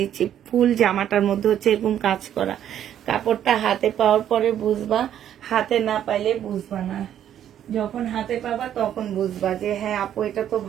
ফুল জামাটার মধ্যে হচ্ছে এরকম কাজ করা। কাপড়টা হাতে পাওয়ার পরে বুঝবা, হাতে না পাইলে বুঝবা না। যখন হাতে পাবা তখন বুঝবা যে হ্যাঁ আপু এটা তো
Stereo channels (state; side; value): quieter; left; 10.4 dB